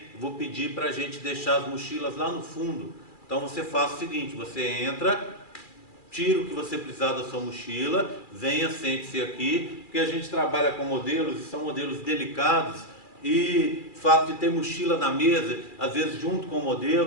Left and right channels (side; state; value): right; late; 2.4 ms